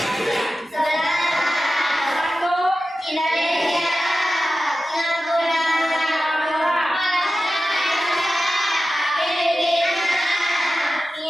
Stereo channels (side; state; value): both; normal; correlation 0.94